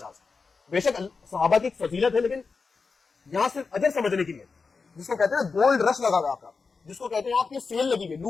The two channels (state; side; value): quieter; right; 4.7 dB